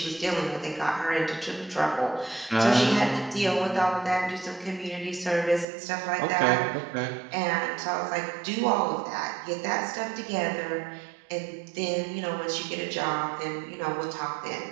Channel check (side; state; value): left; drops out; at 5.7 s